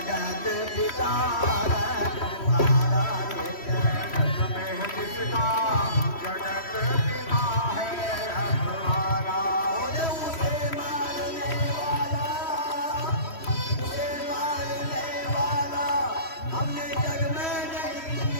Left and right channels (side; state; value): right; late; 3.1 ms